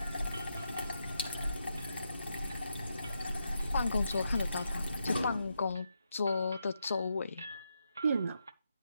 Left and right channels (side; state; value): both; inverted; correlation -0.82